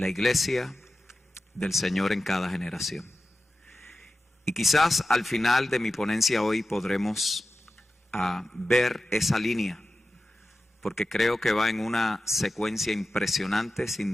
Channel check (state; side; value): normal; both; correlation 0.93